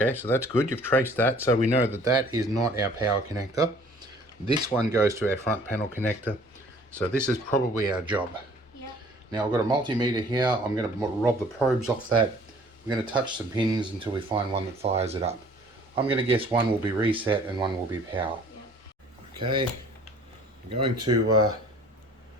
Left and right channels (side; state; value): both; normal; correlation 0.53